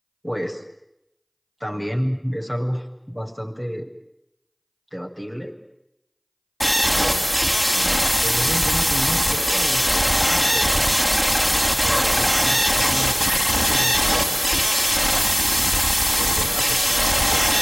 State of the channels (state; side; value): identical; both; correlation 1.00